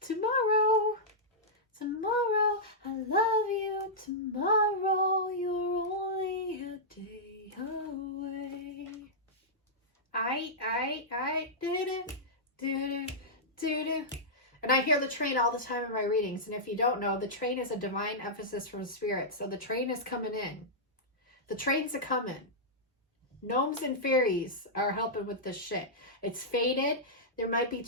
tomorrow. I love you. Tomorrow you're only a day away. I do. And I hear the train all the time in my readings. And if you don't know, the train is a divine emphasis from spirit. So the train is coming in. The trains are coming. Gnomes and fairies are helping with this shit. It's faded. There might be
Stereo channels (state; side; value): normal; both; correlation -0.11